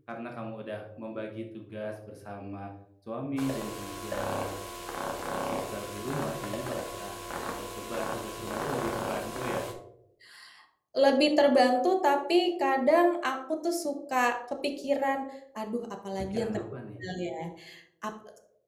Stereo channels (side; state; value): both; identical; correlation 1.00